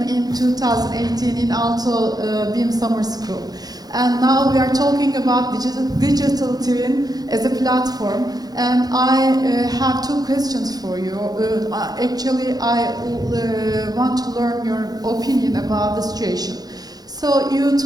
in 2018 in Aalto BIM Summer School. And now we are talking about digital twin as a platform. And I have two questions for you. Actually, I want to learn your opinion about the situation. So you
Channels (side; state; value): left; late; 0.19 ms